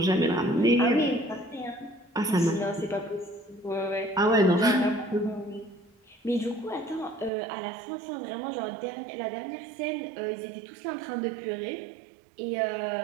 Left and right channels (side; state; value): left; drops out; at 7.3 s